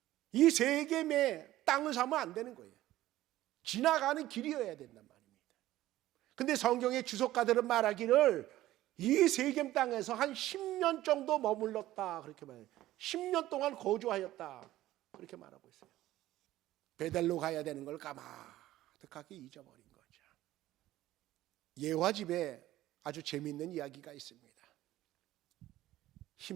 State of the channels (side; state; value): left; quieter; 15.1 dB